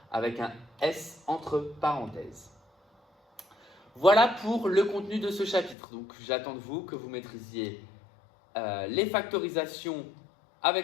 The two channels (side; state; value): right; drops out; at 5.8 s